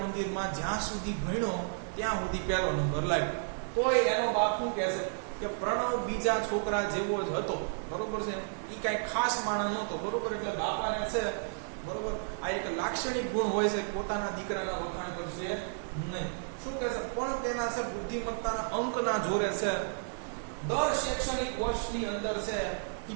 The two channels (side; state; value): left; silent; digital silence